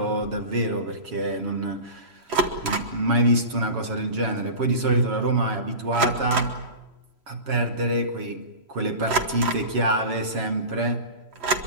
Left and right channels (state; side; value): late; left; 3.0 ms